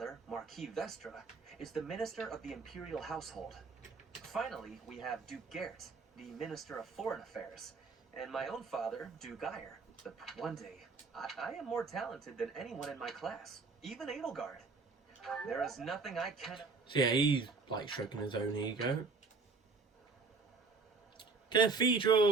Marquis Vestra, is the Minister of the Imperial Household. Finally, we have Duke Gert, the Minister of Foreign Affairs, and my own father, Duke Geyer. But one day, I am more talented than anyone in my class, even Edelgard. There is nothing I cannot... So yeah, he's like stroking his own ego.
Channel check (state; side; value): quieter; left; 4.3 dB